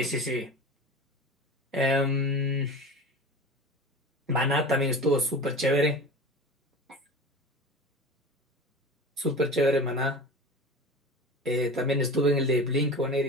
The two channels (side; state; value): both; normal; correlation 0.33